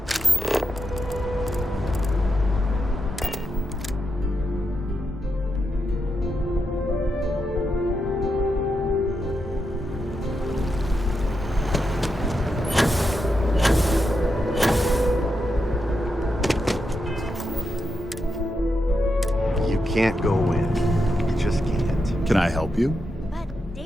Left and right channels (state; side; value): normal; both; correlation 0.85